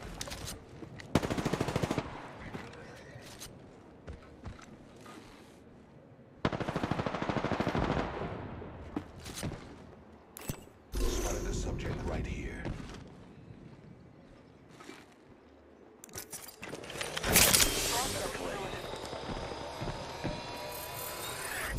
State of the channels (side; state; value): both; identical; correlation 1.00